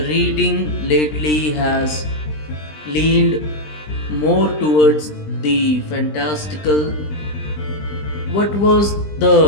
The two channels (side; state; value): right; late; 20 ms